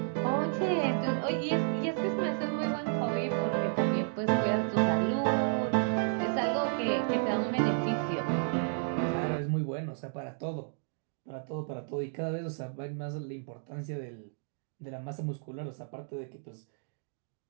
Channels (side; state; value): left; silent; digital silence